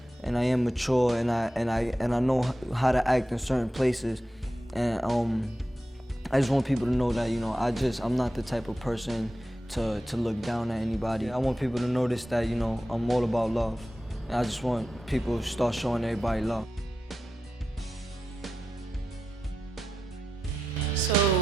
and I am mature, and I know how to act in certain places, and I just want people to know that I'm not the type of person to look down at anybody. I want people to notice that I'm all about love, and I just want people to start showing everybody love. So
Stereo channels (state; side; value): normal; both; correlation 0.90